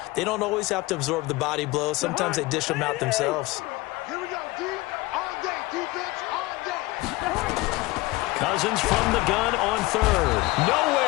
They don't always have to absorb the body blows. Sometimes they dish them out themselves. Here we go, D. All day. Defense all day. Cousins from the gun on third.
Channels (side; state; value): right; quieter; 20.6 dB